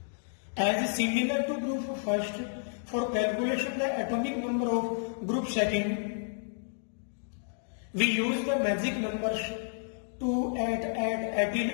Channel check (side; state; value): right; silent; digital silence